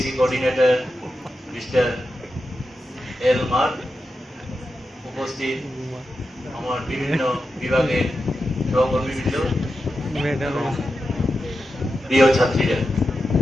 coordinator mister L Mark, উপস্থিত আমার বিভিন্ন বিভাগের সহকর্মীবৃন্দ, প্রিয় ছাত্রীরা,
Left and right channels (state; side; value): normal; both; correlation 0.90